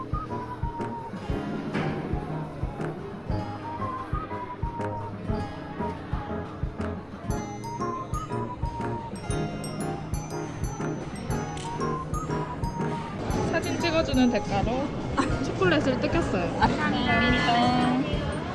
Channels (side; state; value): both; identical; correlation 1.00